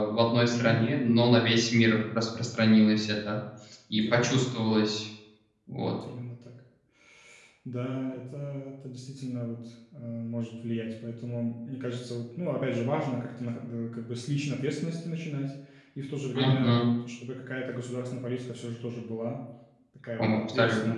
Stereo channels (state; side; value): identical; both; correlation 1.00